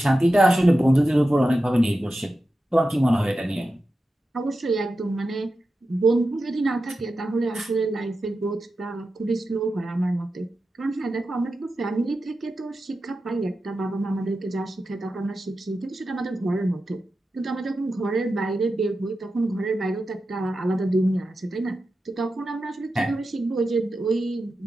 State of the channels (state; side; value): normal; both; correlation 0.91